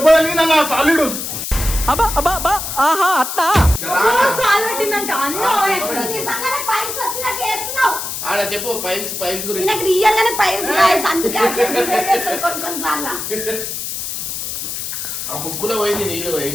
తగిలింది అన్న, సాలిడు. కాల్ పెట్టిందంట అన్న. ఎప్పుడు నిజంగానే పైల్స్ వచ్చినట్టు వేస్తున్నావు. ఆడ చెప్పు పైల్స్ పైల్స్ గురించి. నాకు రియల్ గానే పైల్స్ రాయస్, అందుకే కొన్ని కొన్నిసార్లు ఆ ముక్కులో పోయింది నీళ్ళు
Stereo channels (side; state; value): left; noise; hiss, 5 dB below the sound